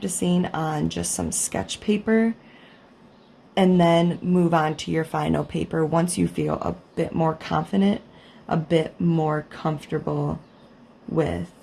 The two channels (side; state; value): both; identical; correlation 1.00